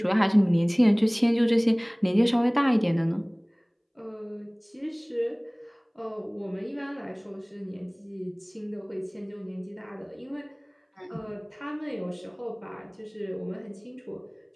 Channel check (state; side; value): identical; both; correlation 1.00